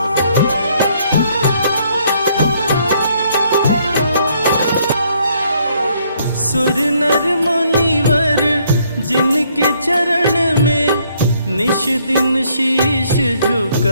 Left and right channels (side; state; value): both; inverted; correlation -0.68